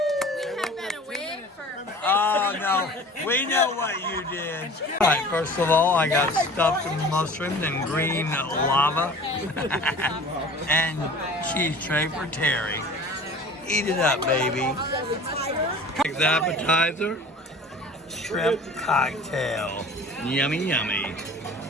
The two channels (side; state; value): both; normal; correlation 0.42